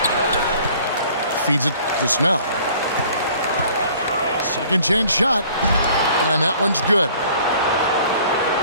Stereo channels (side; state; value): both; inverted; correlation -0.53